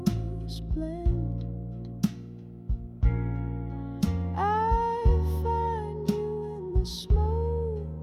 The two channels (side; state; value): both; identical; correlation 1.00